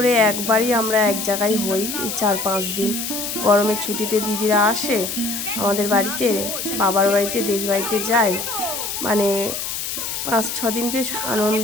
একবারই আমরা এক জায়গায় হই, এই 4-5 দিন গরমের ছুটিতে দিদিরা আসে আমাদের বাড়িতে, বাবার বাড়িতে, দেশ বাড়িতে যায়, 5-6 দিন বেশ আনন্দ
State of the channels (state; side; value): noise; left; hiss, 4 dB below the sound